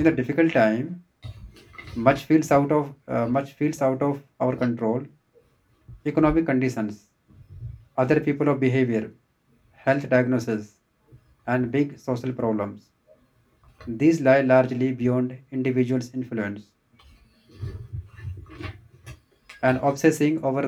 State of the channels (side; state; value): both; identical; correlation 1.00